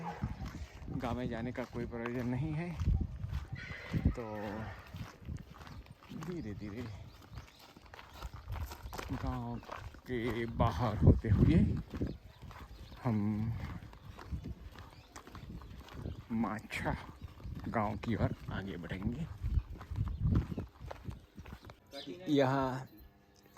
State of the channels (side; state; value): both; identical; correlation 1.00